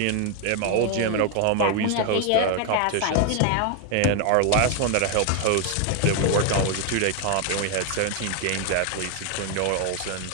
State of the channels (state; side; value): different; both; correlation 0.01